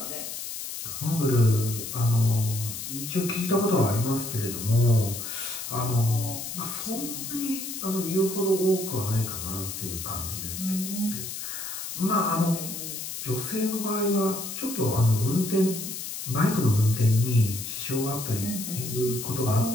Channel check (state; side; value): noise; left; hiss, 7 dB below the sound